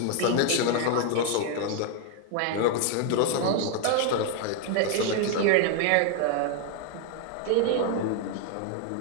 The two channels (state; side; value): different; both; correlation 0.01